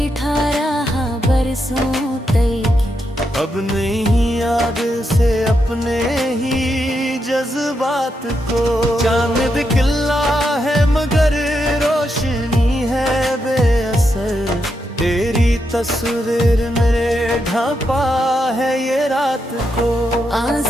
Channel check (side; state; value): both; normal; correlation 0.83